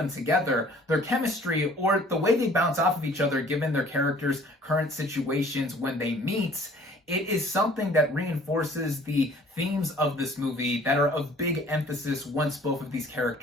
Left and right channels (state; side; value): normal; both; correlation 0.53